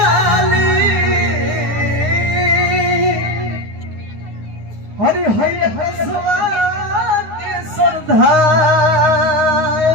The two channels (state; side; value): late; left; 9.7 ms